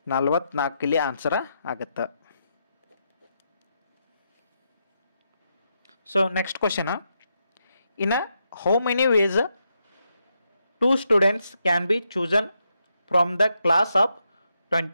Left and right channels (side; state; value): both; inverted; correlation -0.82